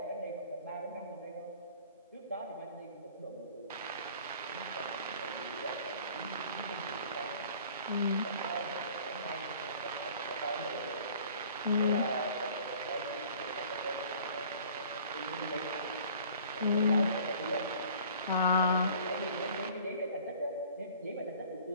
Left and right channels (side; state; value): both; inverted; correlation -0.50